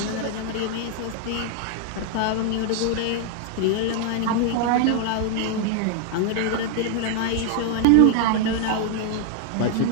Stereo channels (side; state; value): both; different; correlation 0.00